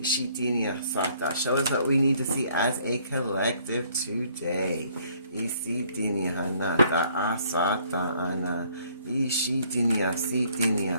Sata. Show us what we need to see as a collective today. Ishitinia Hanata Asata Ana. Ishitinia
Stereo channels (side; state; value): both; inverted; correlation -0.63